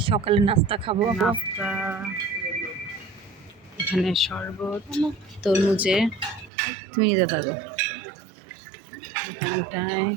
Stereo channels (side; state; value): left; drops out; at 6.5 s